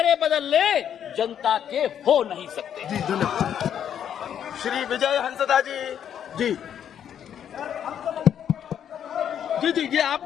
बदल ले, जनता के हो नहीं सकते। जी धन्यवाद। श्री विजय हंसदा जी। जी जी जी ये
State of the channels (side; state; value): right; quieter; 9.2 dB